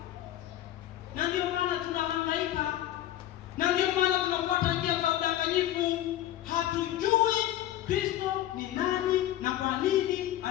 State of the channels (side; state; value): right; quieter; 13.3 dB